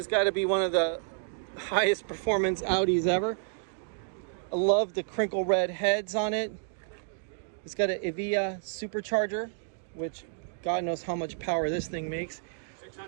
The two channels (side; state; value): left; silent; digital silence